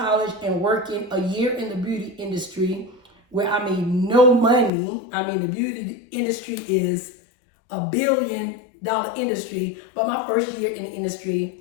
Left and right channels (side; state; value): right; drops out; at 4.7 s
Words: and working a year in the beauty industry, where I made no money, I mean, the beauty industry is $1 billion industry, but my first year in the